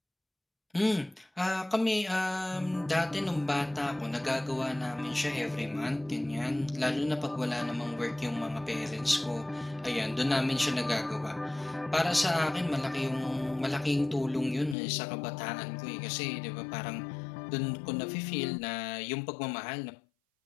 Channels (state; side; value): drops out; right; at 14.8 s